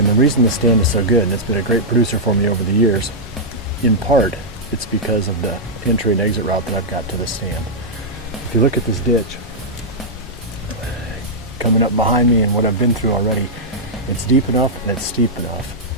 the reason the stand is so good, and it's been a great producer for me over the years, in part, it's because of the entry and exit route that I've got to the stand. If you look at this ditch, coming up behind me and what I've been through already, it's deep enough and it's steep enough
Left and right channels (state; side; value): normal; both; correlation -0.08